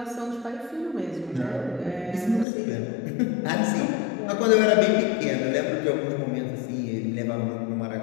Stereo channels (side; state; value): right; drops out; at 2.5 s